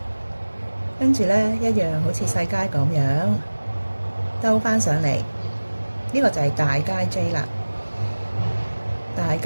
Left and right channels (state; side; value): inverted; both; correlation -1.00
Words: 跟住咧一樣好似細階咁樣兜翻上嚟。呢個就係大階 J 啦。大